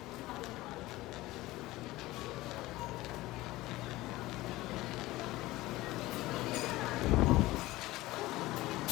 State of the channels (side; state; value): right; quieter; 18.4 dB